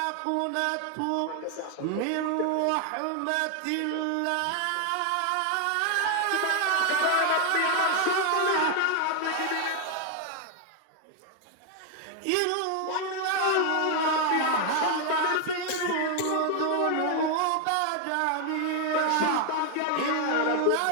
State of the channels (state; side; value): different; both; correlation 0.01